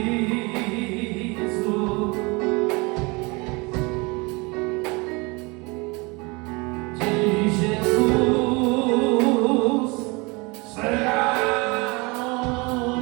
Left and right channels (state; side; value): quieter; left; 27.1 dB